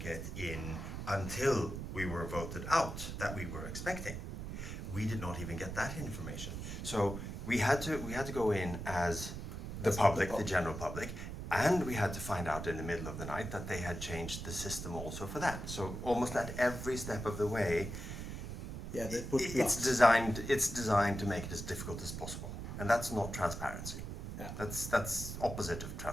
in until we were voted out, that we were expecting. We did not even get that information. So we had to go in as the public, the general public, and we had to find out in the middle of the night that they had changed the system also for that. So almost at every step of the way, Yeah, they put it's designed to make it as difficult as possible, and that's not transparency. Yeah. That's opposite of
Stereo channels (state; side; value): noise; right; rumble, 7 dB below the sound